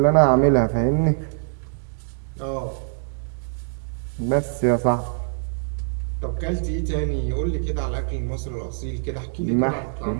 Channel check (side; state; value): left; silent; digital silence